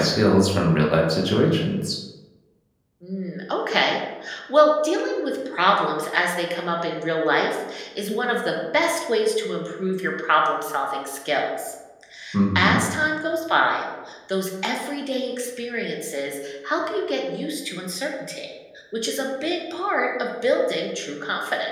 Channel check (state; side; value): identical; both; correlation 1.00